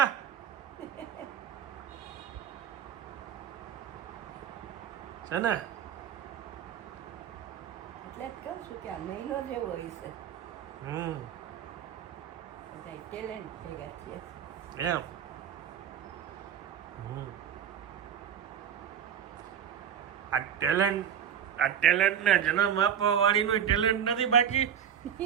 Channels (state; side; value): quieter; left; 8.7 dB